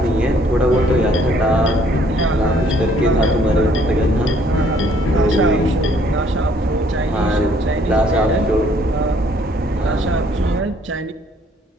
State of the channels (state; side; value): normal; both; correlation 0.63